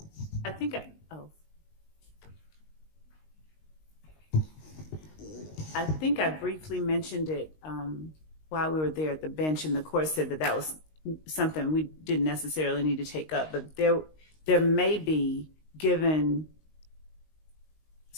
I think I think I briefly mentioned it while we were there at the bench, and the court said that that was something we didn't necessarily need to take up, but there may be, given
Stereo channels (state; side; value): late; right; 19 ms